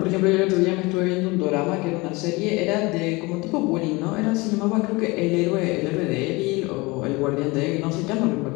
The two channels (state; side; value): quieter; right; 24.2 dB